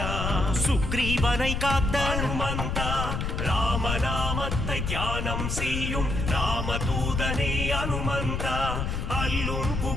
சுக்ரீவனை காத்த அனுமந்தா ராமநாமத்தை தியானம் செய்யும் ராமதூதனே அனுமந்தா அல்லும்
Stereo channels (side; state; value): left; noise; rumble, 2 dB below the sound